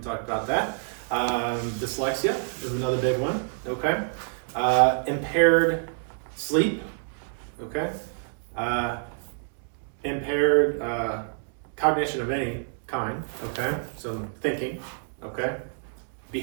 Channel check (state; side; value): silent; left; digital silence